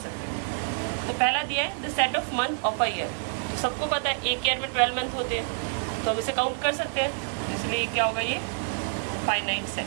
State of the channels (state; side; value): silent; left; 59 dB below the other